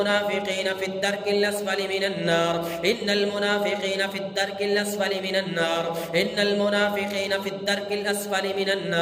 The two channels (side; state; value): both; identical; correlation 1.00